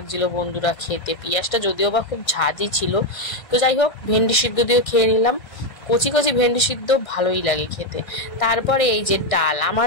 বন্ধুরা খেতে। পেঁয়াজটা যদিও বা খুব ঝাঁঝই ছিল। তো যাই হোক, ভেন্ডি সিদ্ধ দিয়েও খেয়ে নিলাম। কচি কচি ভেন্ডি সিদ্ধ ভালোই লাগে খেতে। তারপরে এই যে ডাল, আমার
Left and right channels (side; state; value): right; late; 1.6 ms